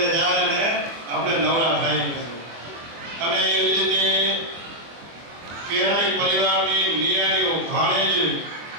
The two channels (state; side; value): late; left; 24 ms